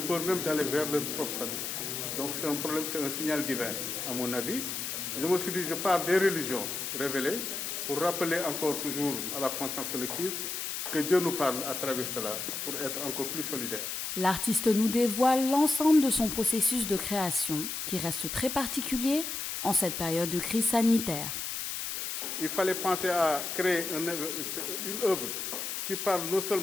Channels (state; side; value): noise; left; hiss, 4 dB below the sound